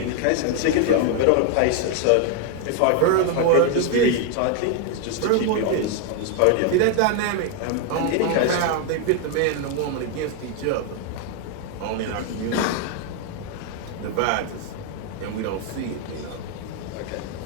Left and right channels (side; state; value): both; different; correlation 0.01